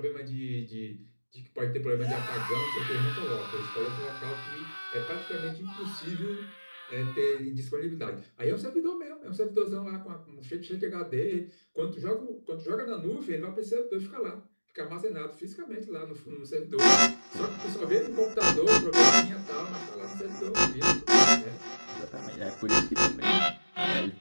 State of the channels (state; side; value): inverted; both; correlation -1.00